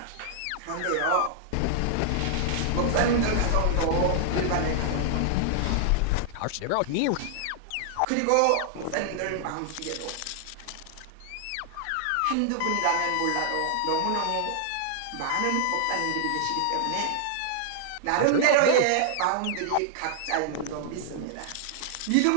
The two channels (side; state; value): both; different; correlation 0.00